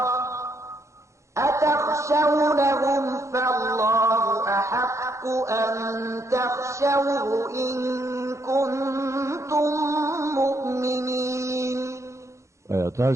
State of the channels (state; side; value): late; left; 0.14 ms